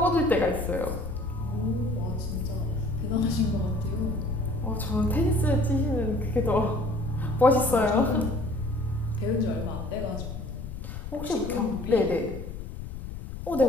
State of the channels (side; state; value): left; noise; rumble, 9 dB below the sound